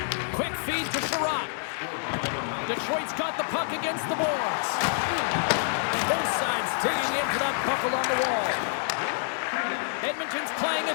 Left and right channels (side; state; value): right; silent; 57 dB below the other